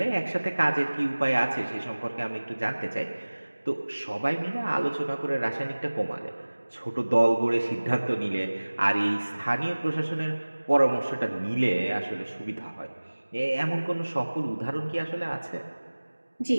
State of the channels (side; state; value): both; inverted; correlation -1.00